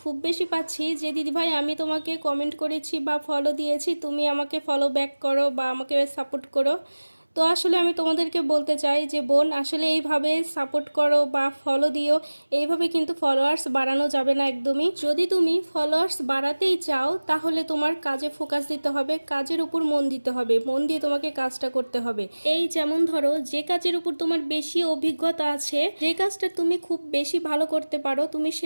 খুব বেশি পাচ্ছি যে দিদিভাই আমি তোমাকে কমেন্ট করেছি বা ফলো দিয়েছি, তুমি আমাকে ফলো ব্যাক করো বা আমাকে সাপোর্ট করো। তো আসলে আমি তোমাদেরকে বলতে চাই যে বোন, আসলে এইভাবে সাপোর্ট করো বা ফলো দিও, এইভাবে কিন্তু ফলোয়ার্স বাড়ানো যাবে না একদমই। যদি তুমি ফলোয়ার্স বাড়াতেই চাও তাহলে তোমার কাজে ফোকাস দিতে হবে, কাজের উপর মন দিতে হবে, মন দিয়ে তোমাকে কাজটা করতে হবে। এই যেমন ধরো, যে কাজের উপর তোমার বেশি অভিজ্ঞতা আছে, যে কাজটা তুমি খুব বেশি ভালো করতে পারো, তুমি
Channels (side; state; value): both; inverted; correlation -1.00